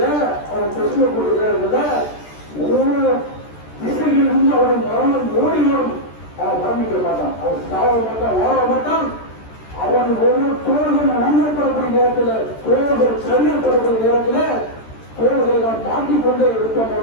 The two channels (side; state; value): right; late; 13 ms